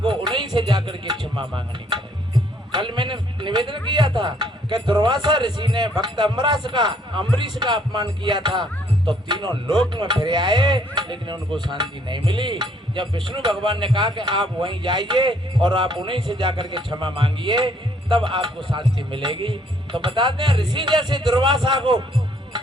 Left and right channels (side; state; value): both; normal; correlation 0.65